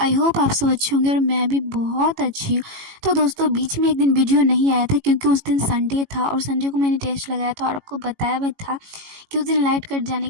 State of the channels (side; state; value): left; late; 18 ms